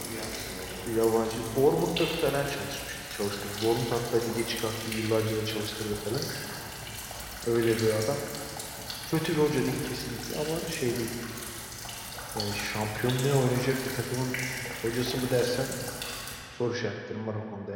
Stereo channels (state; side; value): identical; both; correlation 1.00